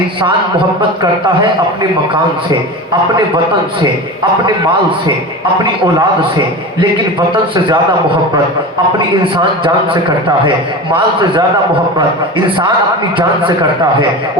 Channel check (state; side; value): normal; both; correlation 0.29